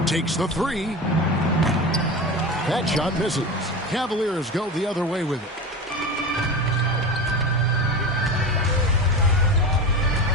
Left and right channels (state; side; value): normal; both; correlation 0.26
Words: Takes the 3. That shot misses. Cavaliers go the other way with it.